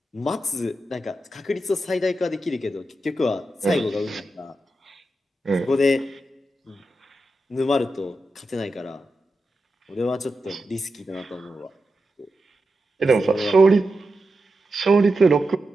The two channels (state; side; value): normal; both; correlation 0.89